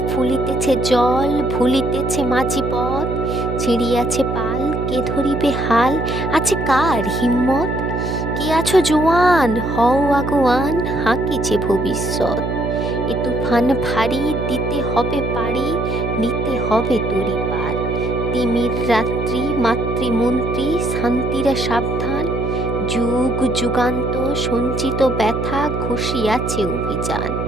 ফুলিতেছে জল, ভুলিতেছে মাঝি পথ, ছিঁড়িয়াছে পাল কে ধরিবে হাল, আছে কার হিম্মত? কে আছো জোয়ান হও আগুয়ান, হাঁকিছে ভবিষ্যৎ। এ তুফান ভারী দিতে হবে পাড়ি, নিতে হবে তরি পার। তিমির রাত্রি মাতৃমন্ত্রী শান্তিরা সাবধান, যুগ যুগান্ত সঞ্চিত ব্যথা ঘষিয়াছে অভিযান।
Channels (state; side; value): noise; right; hum, 3 dB below the sound